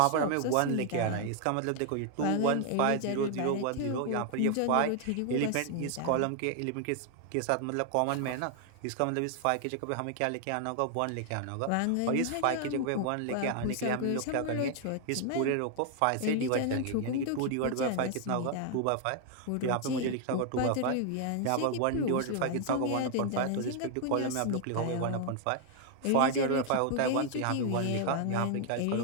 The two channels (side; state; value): both; different; correlation 0.00